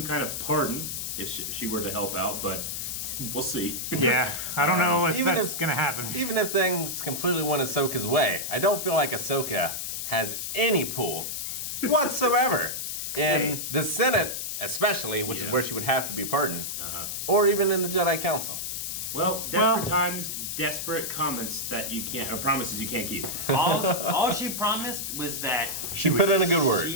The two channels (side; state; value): left; noise; hiss, 4 dB below the sound